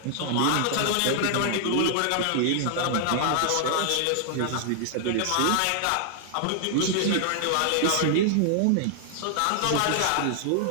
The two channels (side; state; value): both; different; correlation -0.01